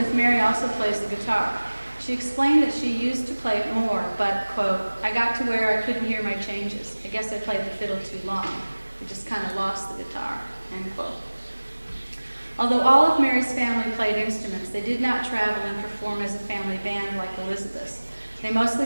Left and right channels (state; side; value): inverted; both; correlation -1.00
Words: Mary also plays the guitar. She explained that she used to play it more, but, quote, I got to where I couldn't hear my changes. I guess I played the fiddle too long. I just kind of lost the guitar, end quote. Although all of Mary's family played instruments, they did not travel and perform as a family band like Elizabeth's. They mostly